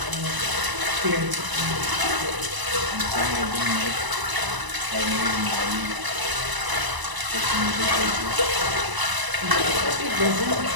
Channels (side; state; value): left; late; 1.0 ms